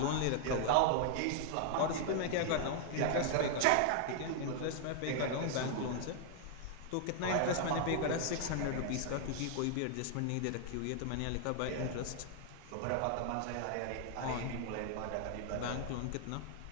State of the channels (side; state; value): both; different; correlation 0.00